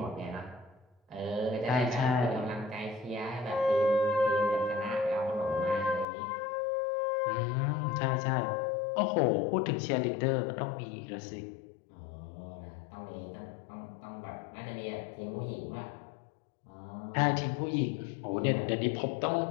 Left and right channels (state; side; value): drops out; right; at 6.1 s